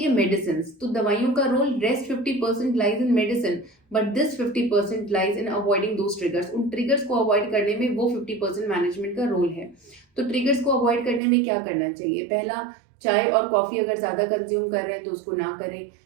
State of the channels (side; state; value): left; drops out; at 11.2 s